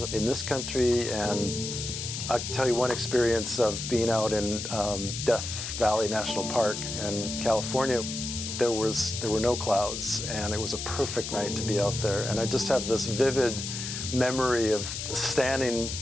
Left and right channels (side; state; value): left; noise; hiss, 5 dB below the sound